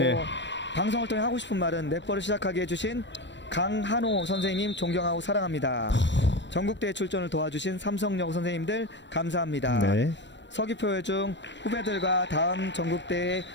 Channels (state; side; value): late; right; 0.53 ms